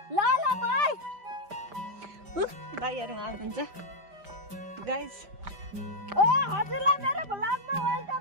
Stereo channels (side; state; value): left; late; 5.0 ms